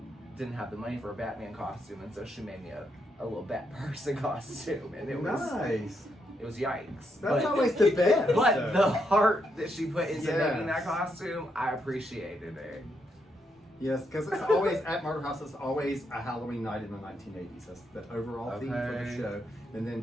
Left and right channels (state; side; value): normal; both; correlation 0.79